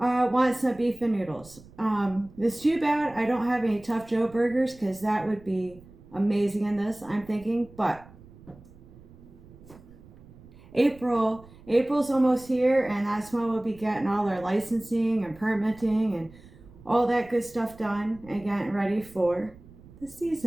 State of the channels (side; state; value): right; noise; rumble, 22 dB below the sound